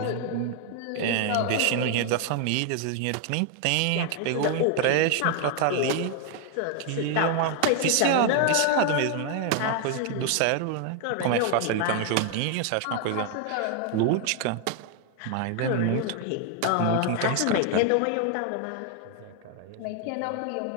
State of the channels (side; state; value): both; different; correlation 0.00